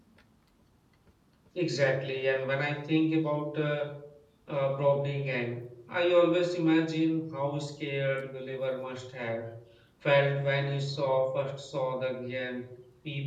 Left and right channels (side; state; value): both; identical; correlation 1.00